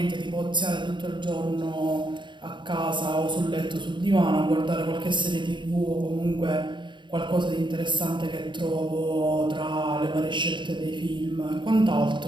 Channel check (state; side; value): late; left; 0.23 ms